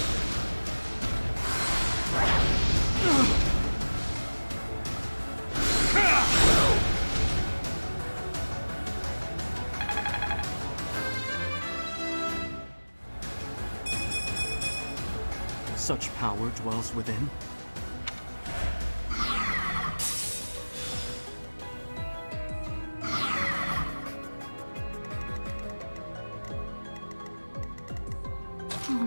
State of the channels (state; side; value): inverted; both; correlation -1.00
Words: Such power dwells within. Oh